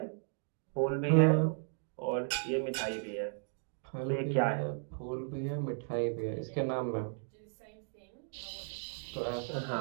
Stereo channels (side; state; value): left; silent; digital silence